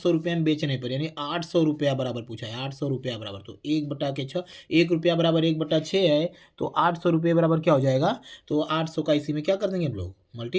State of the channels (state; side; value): identical; both; correlation 1.00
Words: रुपये में बेचने पर यानी 800 रुपया बराबर पूछा है, 800 रुपया बराबर। तो 1/6 1 रुपया बराबर 1/6 है, तो 800 रुपये बराबर क्या हो जाएगा? तो 800 का इसी में क्या कर देंगे हम लोग?